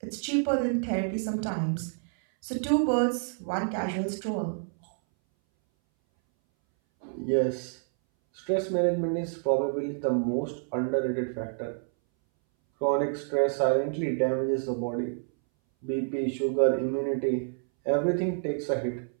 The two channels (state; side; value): silent; left; 59 dB below the other